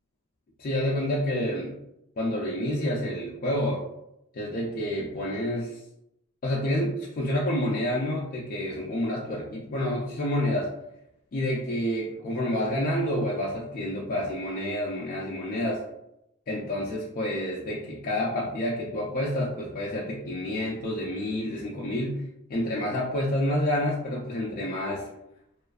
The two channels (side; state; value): both; normal; correlation 0.37